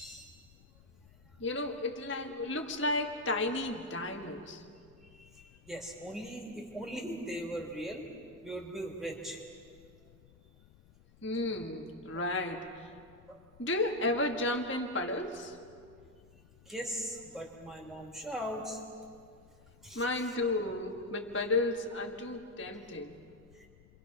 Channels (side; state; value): left; noise; rumble, 24 dB below the sound